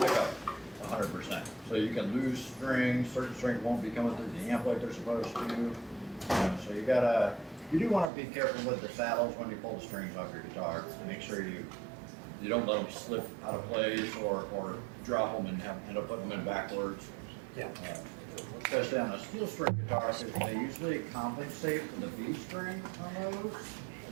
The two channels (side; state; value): left; drops out; at 8.1 s